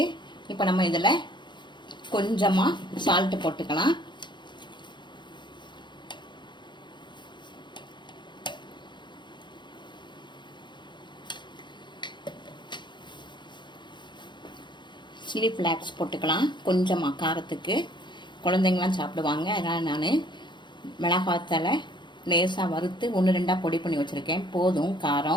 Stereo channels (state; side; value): late; right; 0.22 ms